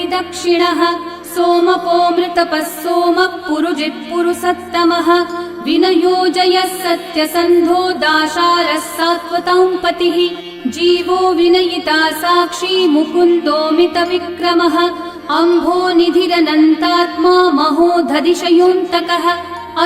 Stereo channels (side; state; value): both; identical; correlation 1.00